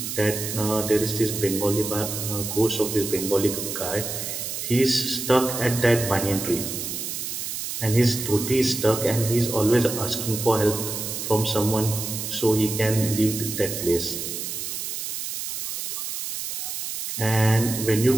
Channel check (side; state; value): right; noise; hiss, 5 dB below the sound